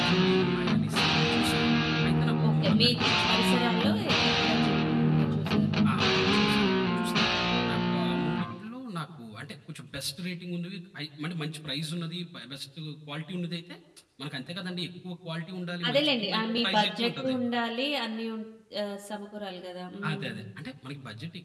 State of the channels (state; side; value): identical; both; correlation 1.00